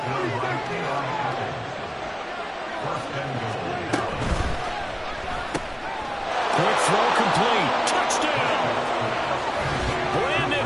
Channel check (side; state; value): both; identical; correlation 1.00